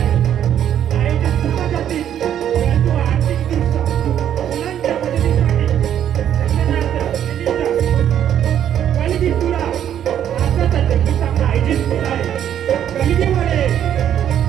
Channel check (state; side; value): quieter; left; 10.1 dB